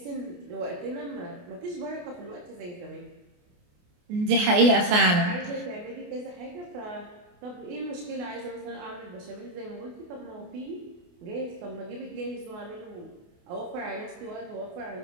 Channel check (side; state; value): left; late; 28 ms